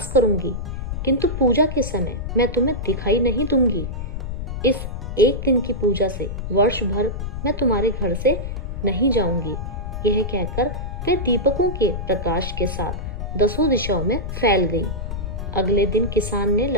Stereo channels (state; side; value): noise; left; rumble, 5 dB below the sound